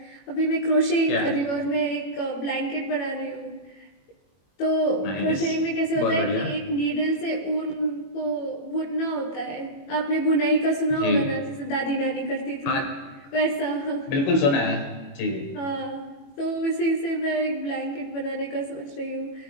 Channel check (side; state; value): right; late; 21 ms